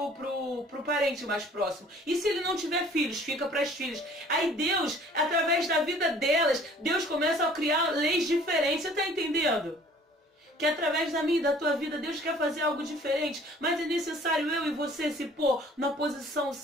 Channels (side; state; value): both; normal; correlation 0.53